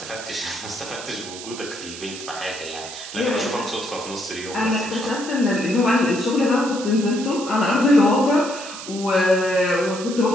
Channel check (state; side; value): noise; right; hiss, 11 dB below the sound